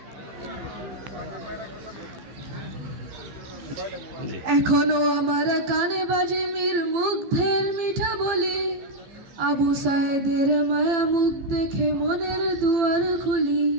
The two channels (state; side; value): late; left; 15 ms